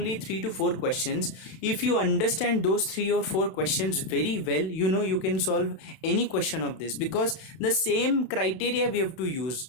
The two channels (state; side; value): late; right; 31 ms